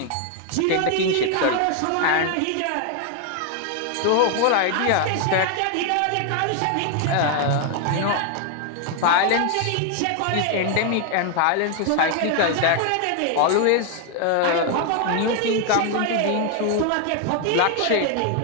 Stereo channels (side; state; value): both; different; correlation 0.00